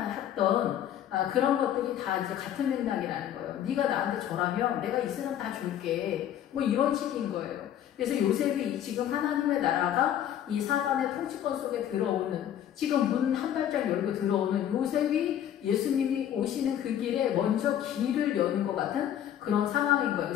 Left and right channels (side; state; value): right; quieter; 10.6 dB